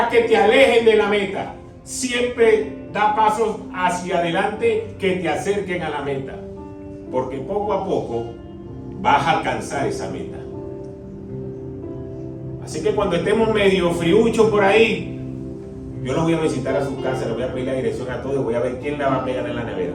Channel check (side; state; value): both; identical; correlation 1.00